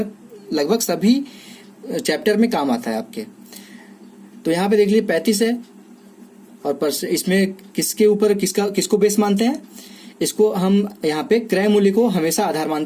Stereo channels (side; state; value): both; identical; correlation 1.00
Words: लगभग सभी चैप्टर में काम आता है आपके। तो यहाँ पे देख लीजिए 35 है, और इसमें किसके ऊपर किसको बेस मानते हैं? इसको हम यहाँ पे क्रय मूल्य को हमेशा आधार